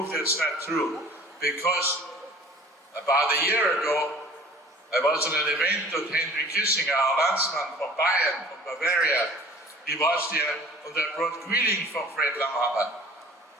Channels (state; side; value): normal; both; correlation 0.47